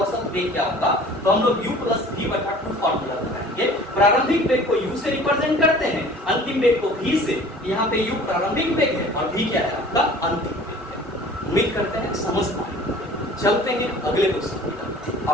वेग क्या होगा तो हम लोग u प्लस v बटा 2 फॉर्मूला लगाएंगे। प्रारंभिक वेग को u से रिप्रेजेंट करते हैं, अंतिम वेग को v से। यहाँ पे u प्रारंभिक वेग है और v क्या है? आपका अंतिम वेग है। उम्मीद करते हैं समझ पाए। चलते हैं अगले क्वेश्चन की।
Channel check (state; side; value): normal; both; correlation 0.47